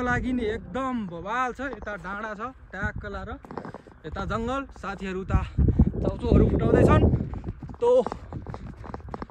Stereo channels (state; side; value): identical; both; correlation 1.00